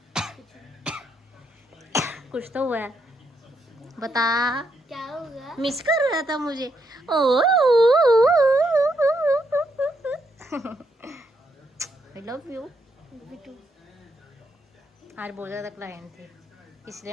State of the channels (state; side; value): normal; both; correlation 0.77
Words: कुछ तो हुआ है, बता क्या होगा? मिस कर रहा था मुझे। ओ आई लव यू। बिटू आज बहुत ज़्यादा क्लाइंट थे, इसलिए